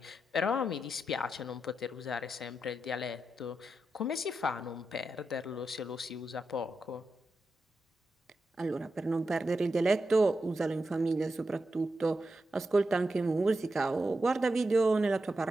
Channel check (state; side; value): normal; both; correlation 0.88